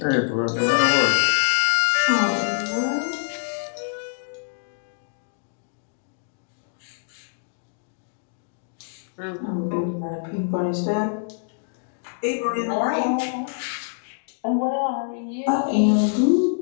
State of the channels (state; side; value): silent; right; digital silence